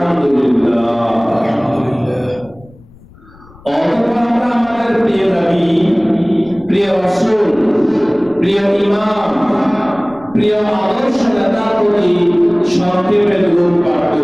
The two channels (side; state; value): left; noise; rumble, 25 dB below the sound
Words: অতঃপর আমরা আমাদের প্রিয় নবী, প্রিয় রাসূল, প্রিয় ইমাম, প্রিয় আদর্শ নেতার প্রতি সংক্ষেপে দরুদ পাঠ